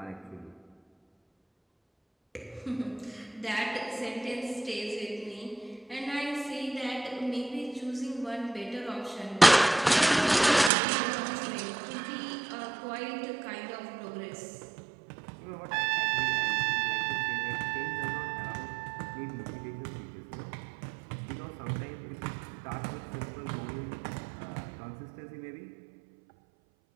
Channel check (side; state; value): left; drops out; at 10.7 s